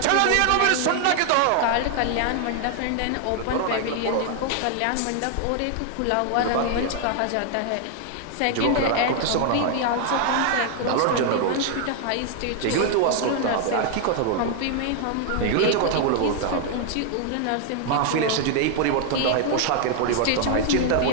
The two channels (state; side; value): different; both; correlation 0.00